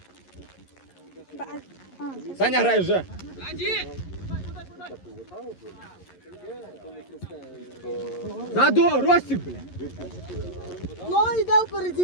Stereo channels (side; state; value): right; late; 11 ms